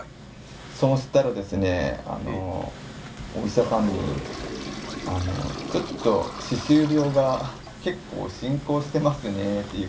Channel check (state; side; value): identical; both; correlation 1.00